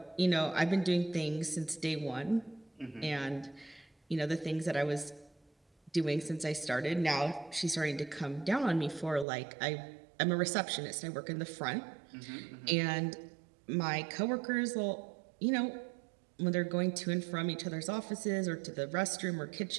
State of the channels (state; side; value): drops out; left; at 9.2 s